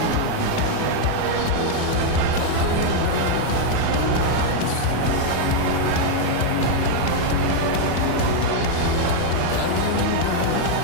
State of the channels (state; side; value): different; both; correlation 0.00